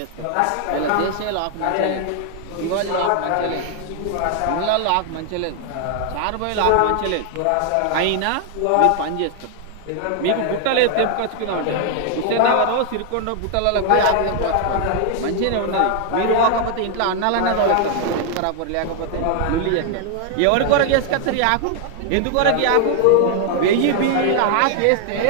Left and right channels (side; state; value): both; different; correlation 0.00